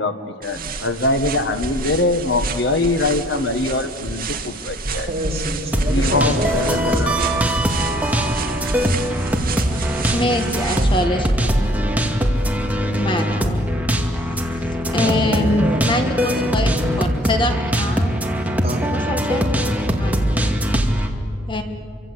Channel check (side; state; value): both; normal; correlation 0.59